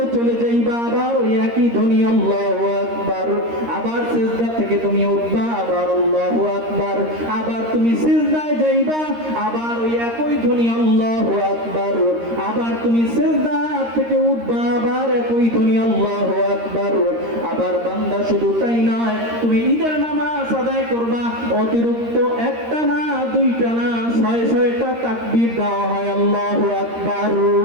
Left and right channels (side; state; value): left; late; 13 ms